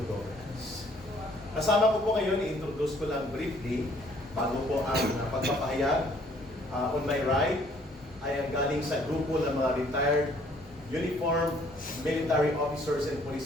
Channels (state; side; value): normal; both; correlation 0.61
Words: governance. Kasama ko po ngayon, i-introduce ko lang briefly, bago po ang pagpapahayag. On my right, ay ang galing sa grupo ng mga retired uniformed military officers and